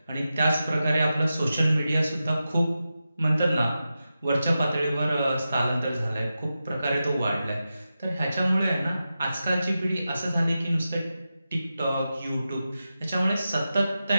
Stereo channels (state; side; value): inverted; both; correlation -0.91